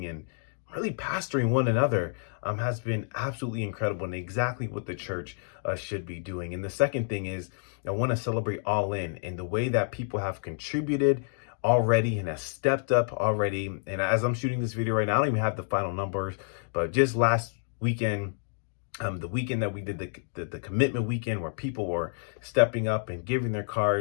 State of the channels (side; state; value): right; silent; digital silence